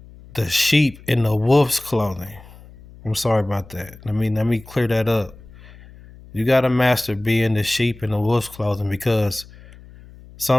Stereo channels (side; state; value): left; noise; hum, 21 dB below the sound